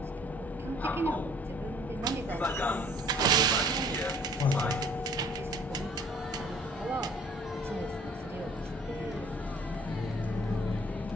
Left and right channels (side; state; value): both; normal; correlation 0.55